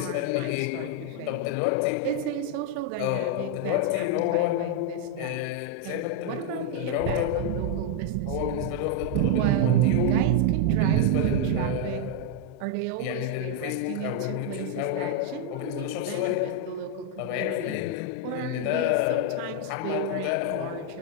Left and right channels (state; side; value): different; both; correlation 0.00